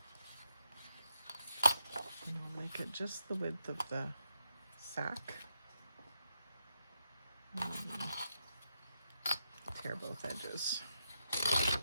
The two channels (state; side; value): inverted; both; correlation -0.83